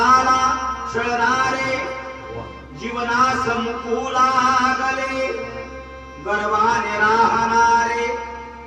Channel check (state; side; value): identical; both; correlation 1.00